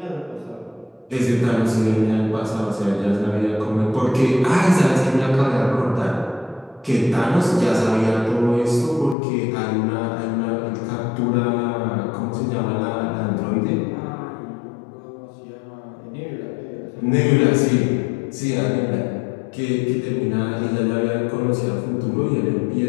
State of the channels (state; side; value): drops out; right; at 9.2 s